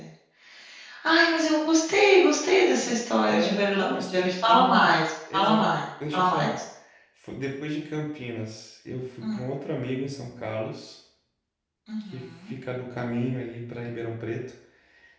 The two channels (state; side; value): identical; both; correlation 1.00